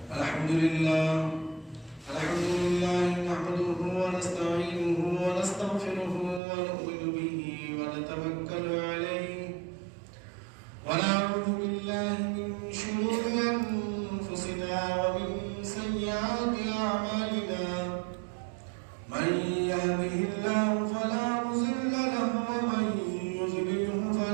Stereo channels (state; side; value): drops out; left; at 6.4 s